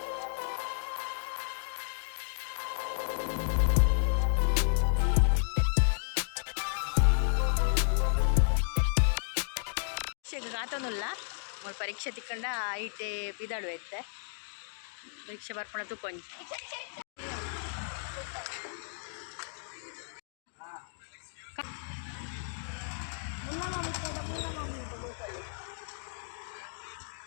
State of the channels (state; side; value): silent; right; digital silence